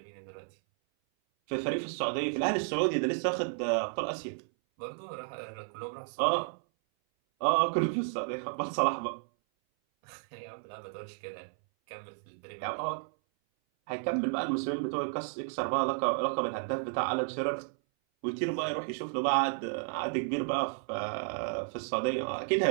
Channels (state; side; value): silent; left; 56 dB below the other